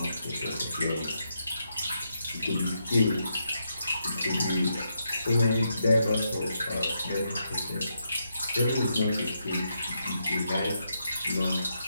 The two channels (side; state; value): both; inverted; correlation -0.81